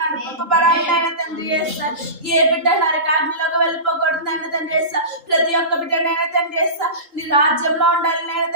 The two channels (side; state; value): left; late; 3.7 ms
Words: నడిపింపబడాలి నాయన తండ్రి. ఏ బిడ్డ నరకాగ్నిలోకి వెళ్ళిపోకూడదు నాయన తండ్రి. ప్రతి ఒక్క బిడ్డ నాయన తండ్రి నీ రాజ్యంలో ఉండాలి నాయన